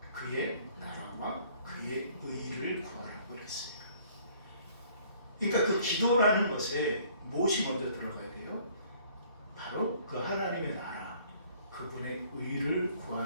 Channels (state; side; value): inverted; both; correlation -0.58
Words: 그의 나라와 그의 의를 구하라고 그랬어요. 그러니까 그 기도라는 것에 무엇이 먼저 들어가야 돼요? 바로 그 하나님의 나라, 그분의 의를